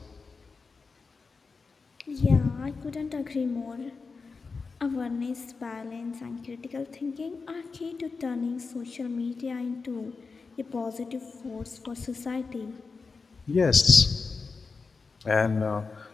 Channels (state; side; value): quieter; right; 4.6 dB